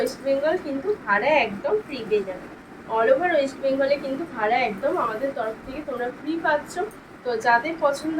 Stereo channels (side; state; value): both; identical; correlation 1.00